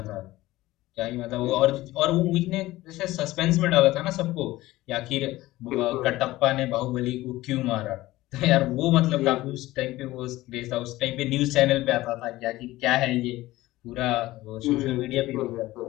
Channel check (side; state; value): right; quieter; 17.5 dB